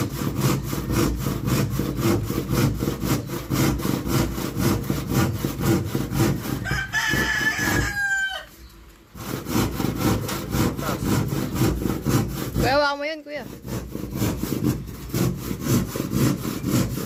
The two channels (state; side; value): identical; both; correlation 1.00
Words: Kuya, hawakan mo yun, kuya.